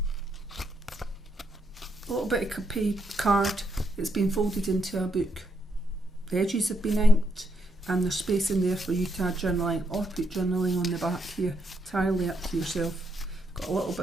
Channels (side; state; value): both; normal; correlation 0.77